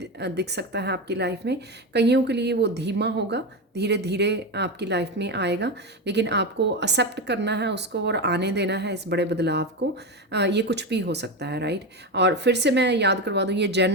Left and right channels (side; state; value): both; normal; correlation 0.16